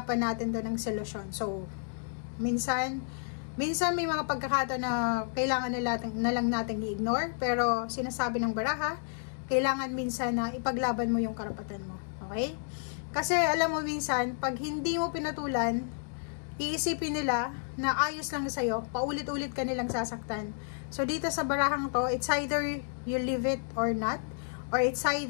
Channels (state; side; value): silent; right; digital silence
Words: natin doon ng solusyon. So, minsan may mga pagkakataon na kailangan na lang natin i-ignore, pero sinasabi ng baraha, kailangan minsan na ipaglaban mo yung karapatan mo. Okay? Kasi alam mo minsan, pag hindi mo pinatulan, iisipin nila na ayos lang sa'yo, paulit-ulit ka nilang sasaktan. So, dito sa barahang to, it's either you leave it or not. Or it's